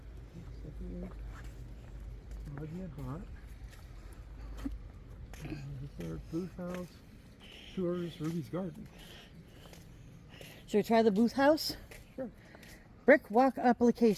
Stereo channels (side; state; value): both; identical; correlation 1.00